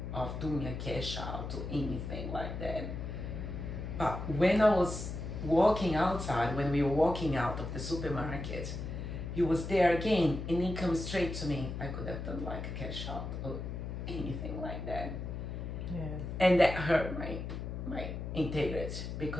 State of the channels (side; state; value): left; noise; hum, 6 dB below the sound